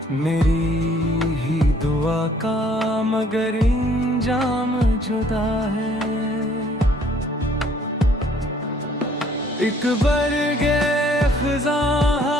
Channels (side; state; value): both; normal; correlation 0.61